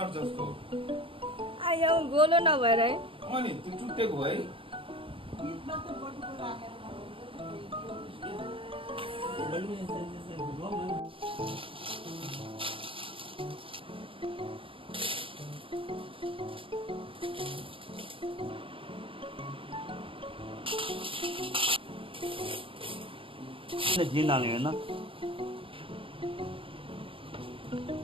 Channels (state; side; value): late; left; 0.26 ms